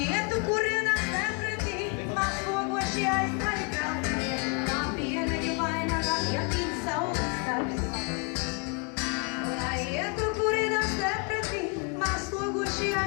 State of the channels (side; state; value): right; quieter; 36.3 dB